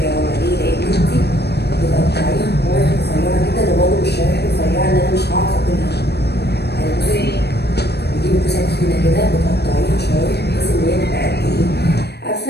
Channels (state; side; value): late; right; 0.48 ms